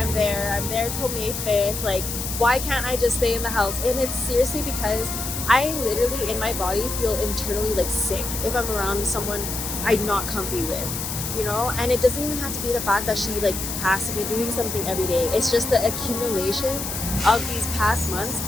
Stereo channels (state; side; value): noise; left; hiss, 5 dB below the sound